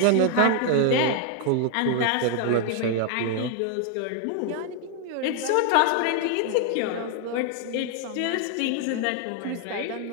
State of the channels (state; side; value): different; both; correlation 0.00